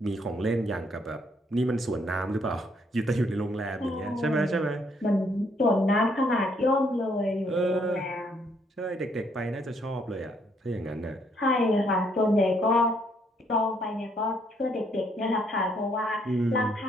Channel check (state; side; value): normal; both; correlation 0.70